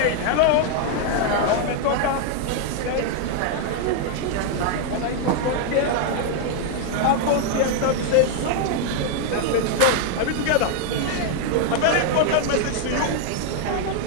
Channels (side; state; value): both; different; correlation 0.00